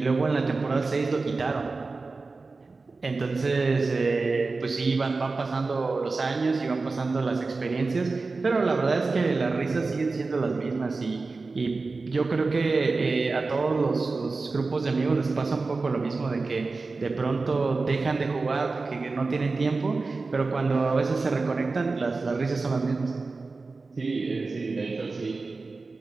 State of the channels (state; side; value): quieter; left; 3.9 dB